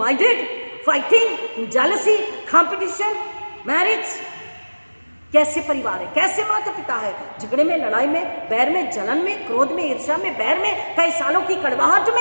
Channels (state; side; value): inverted; both; correlation -1.00